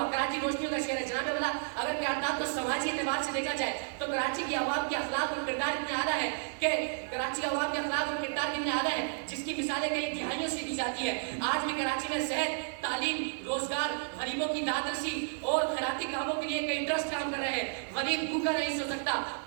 کراچی روشنیوں کا شہر ہے. جناب والا اگر قرارداد کو سماجی اعتبار سے دیکھا جائے تو کراچی کی عوام کے اخلاق اور کردار اتنے اعلیٰ ہے کہ کراچی عوام کے اخلاق اور کردار اتنے اعلیٰ ہیں جس کی مثالیں کئی دہائیوں سے دی جاتی ہے. آج بھی کراچی میں صحت، تعلیم، روزگار، غریبوں کی داد رسی اور خیراتی کاموں کے لیے کئی ٹرسٹ کام کر رہے ہیں. غریب بھوکا نہیں سو سکتا،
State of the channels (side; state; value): left; silent; 56 dB below the other